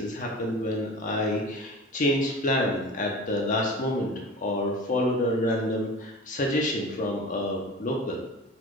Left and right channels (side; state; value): both; normal; correlation 0.36